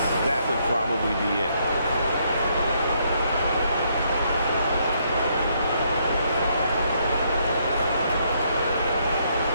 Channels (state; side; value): inverted; both; correlation -0.72